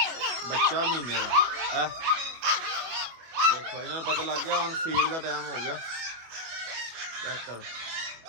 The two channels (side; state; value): left; late; 25 ms